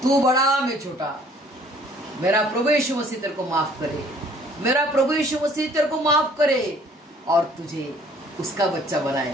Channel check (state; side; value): normal; both; correlation 0.57